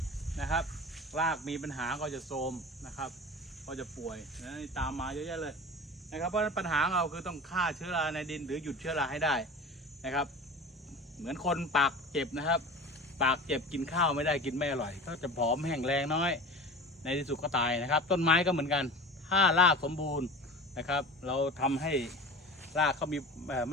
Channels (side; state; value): both; normal; correlation 0.35